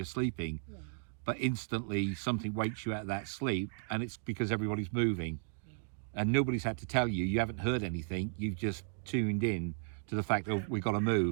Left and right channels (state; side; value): silent; left; digital silence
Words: sleeping, Yeah. but instantly something wakes you out of that sleep, and it's because everybody's moving. and nobody's had to tell you. You haven't heard anything. You've just tuned in to the fact that we've got to